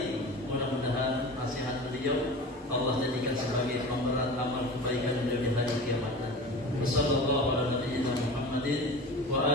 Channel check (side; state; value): both; normal; correlation 0.34